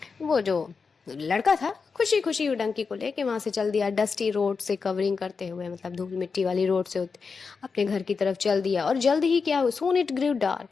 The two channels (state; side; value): quieter; right; 5.1 dB